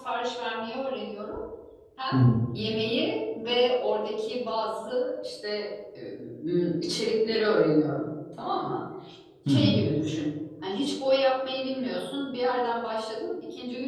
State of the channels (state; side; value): identical; both; correlation 1.00